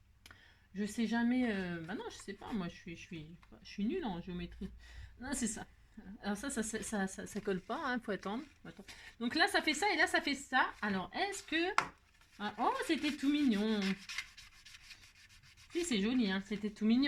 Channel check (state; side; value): identical; both; correlation 1.00